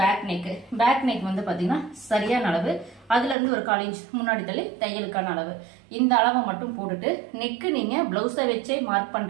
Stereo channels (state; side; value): drops out; left; at 3.4 s